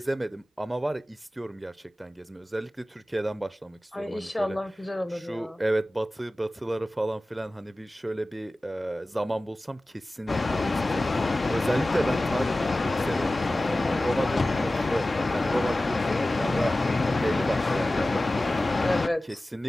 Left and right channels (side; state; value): both; normal; correlation 0.96